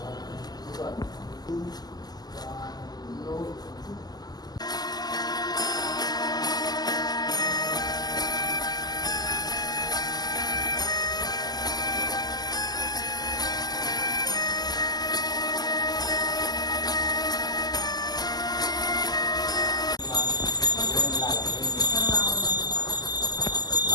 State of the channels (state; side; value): late; right; 0.20 ms